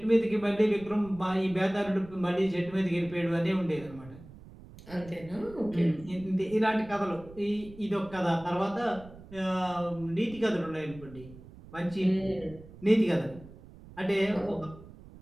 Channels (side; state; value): right; noise; rumble, 19 dB below the sound